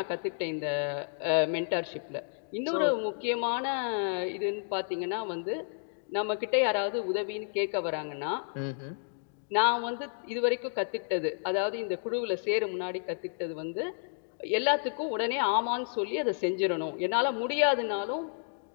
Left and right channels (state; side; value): silent; right; digital silence